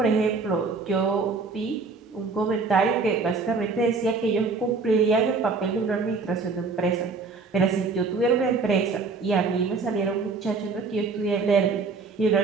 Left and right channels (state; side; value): quieter; left; 4.3 dB